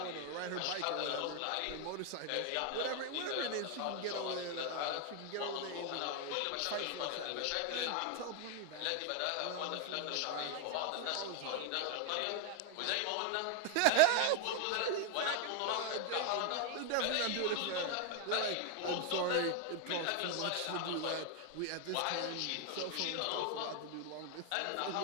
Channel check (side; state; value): both; different; correlation 0.01